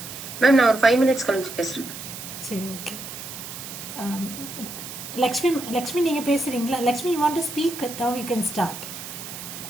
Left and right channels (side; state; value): right; noise; hiss, 10 dB below the sound